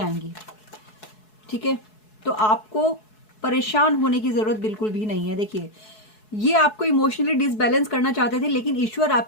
ठीक है। तो आपको परेशान होने की जरूरत बिल्कुल भी नहीं है। देखिए, ये आपको इमोशनली डिसबैलेंस करना चाहते थे, लेकिन ईश्वर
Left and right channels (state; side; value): late; right; 4.7 ms